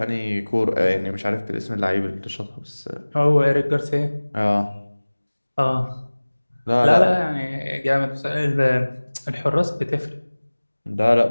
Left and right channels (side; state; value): both; inverted; correlation -1.00